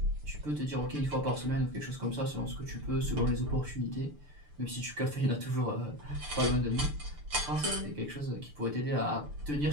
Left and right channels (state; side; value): late; left; 6.8 ms